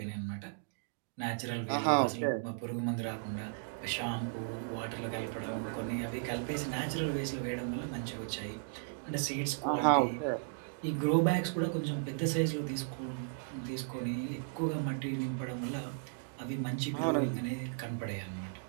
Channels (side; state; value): left; silent; digital silence